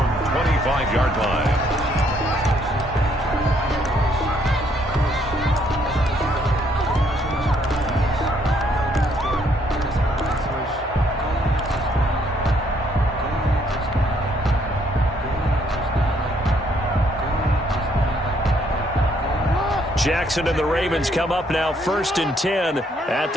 line. Jackson and the Ravens come up now 1st and 10 at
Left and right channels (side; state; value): both; normal; correlation 0.68